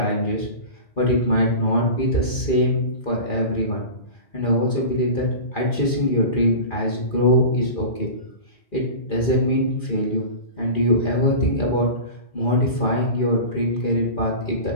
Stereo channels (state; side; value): late; right; 2.4 ms